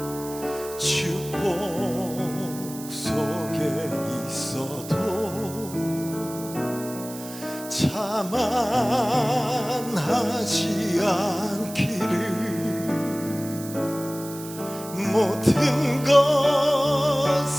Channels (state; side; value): noise; right; hiss, 14 dB below the sound